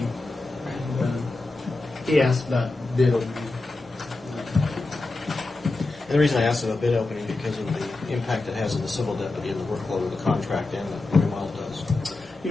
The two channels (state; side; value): quieter; right; 3.2 dB